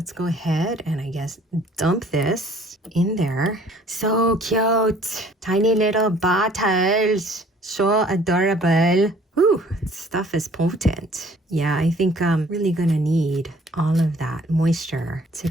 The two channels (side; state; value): both; normal; correlation 0.55